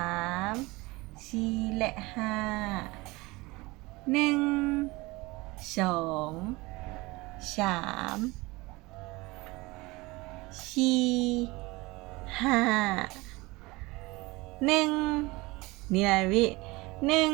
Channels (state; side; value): quieter; left; 22.6 dB